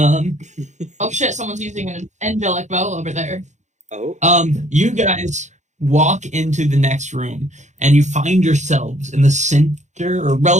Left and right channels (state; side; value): late; left; 0.34 ms